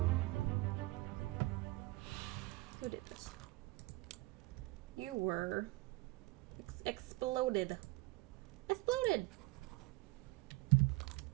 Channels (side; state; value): left; quieter; 21.2 dB